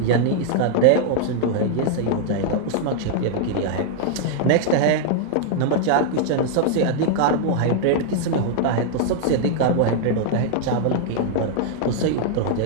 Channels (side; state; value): both; different; correlation -0.01